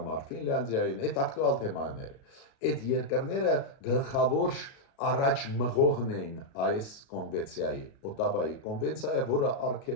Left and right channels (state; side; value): late; right; 36 ms